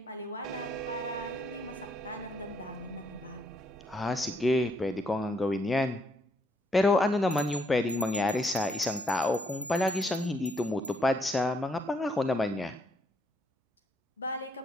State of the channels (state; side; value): normal; both; correlation 0.71